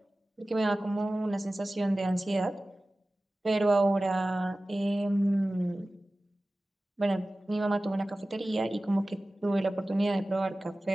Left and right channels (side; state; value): both; normal; correlation 0.96